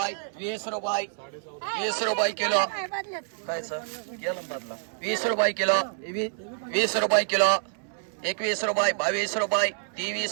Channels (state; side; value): silent; left; 60 dB below the other